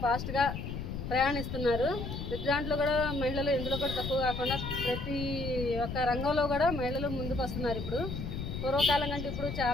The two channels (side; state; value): left; noise; rumble, 5 dB below the sound